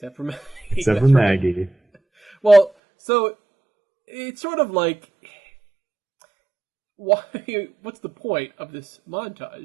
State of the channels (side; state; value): left; drops out; at 2.7 s